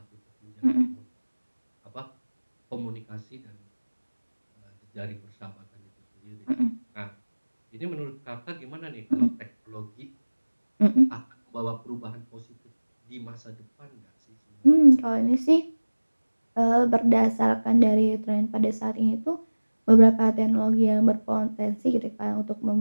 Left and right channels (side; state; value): both; inverted; correlation -1.00